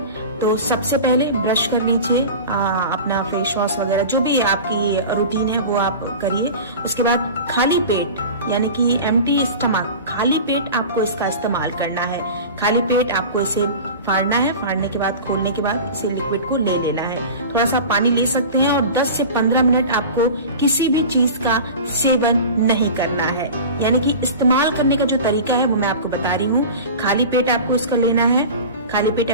तो सबसे पहले ब्रश कर लीजिए, अपना फेस वॉश वगैरह जो भी आपकी रूटीन है वो आप करिए। उसके बाद खाली पेट, यानी कि एम्प्टी स्टमक, खाली पेट आपको इसका इस्तेमाल करना है। खाली पेट आपको इसे फाड़ना है। फाड़ने के बाद, खोलने के बाद इसे लिक्विड को ले लेना है। थोड़ा सा पानी ले सकते हैं और 10 से 15 मिनट आपको किसी भी चीज का सेवन नहीं करना है। यानी कि इस्तेमाल करने का जो तरीका है वो मैं आपको बता रही हूँ। खाली पेट आपको इसका लेना है। खाली पेट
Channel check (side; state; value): both; inverted; correlation -0.33